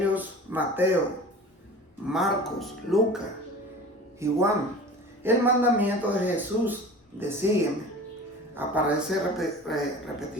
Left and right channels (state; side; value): normal; both; correlation 0.39